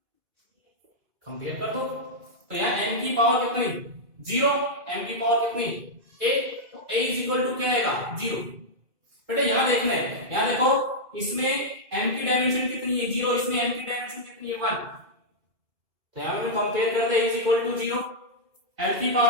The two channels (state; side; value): late; left; 2.3 ms